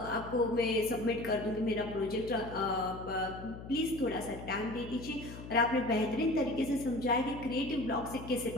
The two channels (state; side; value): noise; left; hum, 12 dB below the sound